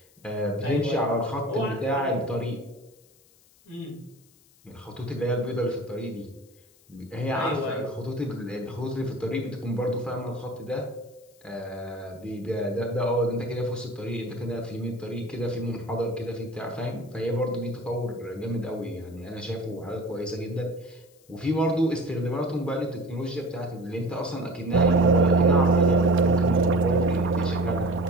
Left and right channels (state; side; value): noise; left; hiss, 29 dB below the sound